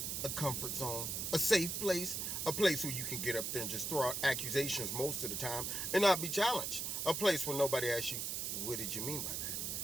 a comfort zone, a safe place, a place where you can get up there and just throw out accusations most of the time and not be challenged. A place where nobody asks you, what did you mean by that?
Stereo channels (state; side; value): noise; right; hiss, 2 dB below the sound